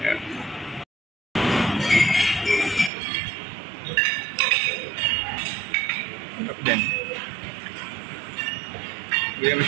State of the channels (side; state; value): left; drops out; at 2.9 s